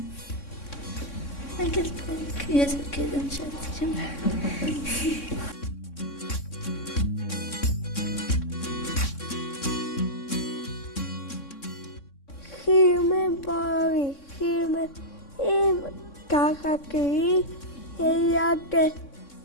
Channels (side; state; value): right; late; 3.6 ms